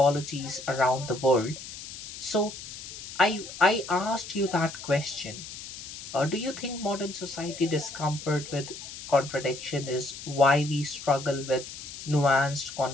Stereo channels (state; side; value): noise; left; hiss, 12 dB below the sound